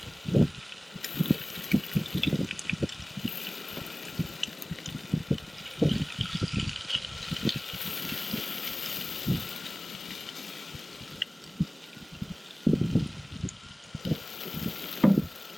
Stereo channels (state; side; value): normal; both; correlation 0.96